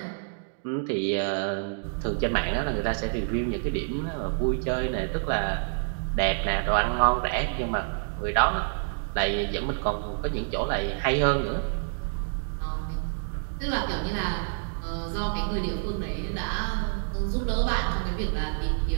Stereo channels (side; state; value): left; silent; digital silence